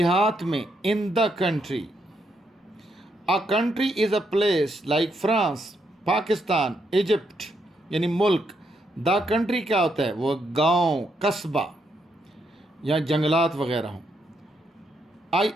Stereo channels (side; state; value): both; normal; correlation 0.78